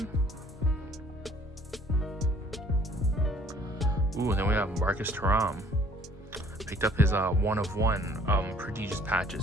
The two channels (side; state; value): both; normal; correlation 0.56